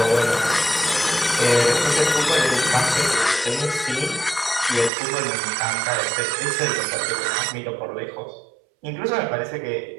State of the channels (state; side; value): drops out; left; at 4.9 s